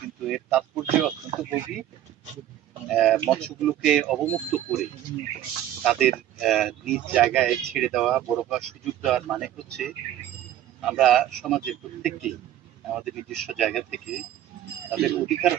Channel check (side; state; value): left; quieter; 12.0 dB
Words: কিন্তু এর তাৎপর্য অত্যন্ত গভীর। মৎস্যগুলোকে অবমুক্ত করে তাদের নিজ জায়গায় ছেড়ে দেওয়া, বড় হওয়ার সুযোগ দেওয়ার মানে হচ্ছে আমরা সমাজের প্রত্যেককে আমাদের নিজস্ব জায়গা থেকে তাদের অধিকার